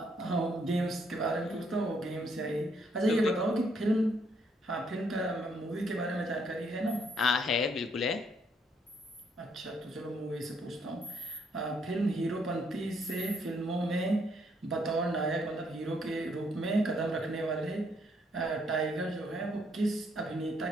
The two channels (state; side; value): normal; both; correlation 0.71